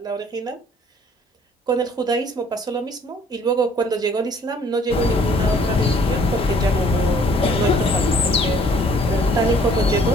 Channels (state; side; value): normal; both; correlation 0.58